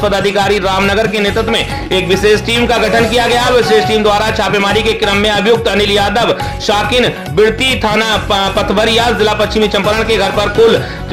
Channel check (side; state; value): both; identical; correlation 1.00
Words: रामनगर के नेतृत्व में एक विशेष टीम का गठन किया गया। विशेष टीम द्वारा छापेमारी के क्रम में अभियुक्त अनिल यादव शाकिन बिरती थाना पथवरिया जिला पश्चिमी चंपारण के घर पर कुल